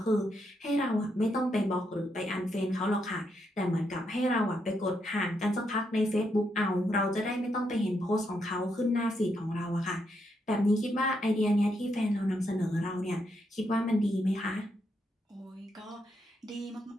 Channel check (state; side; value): normal; both; correlation 0.79